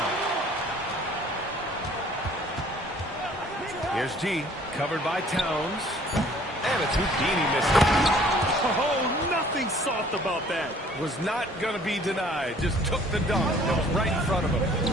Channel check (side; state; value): both; normal; correlation 0.56